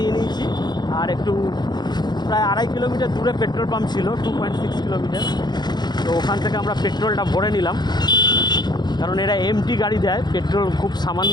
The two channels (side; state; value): right; late; 0.21 ms